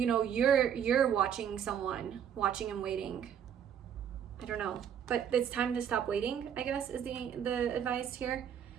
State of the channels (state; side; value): quieter; left; 8.7 dB